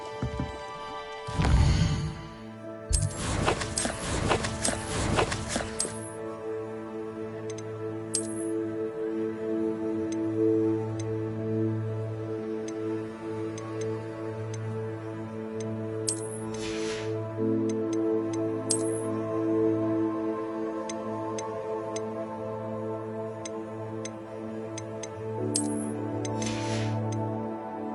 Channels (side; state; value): both; identical; correlation 1.00